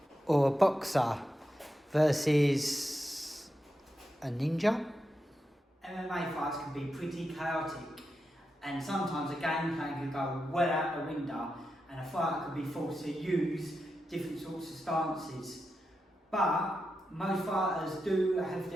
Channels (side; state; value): both; normal; correlation 0.88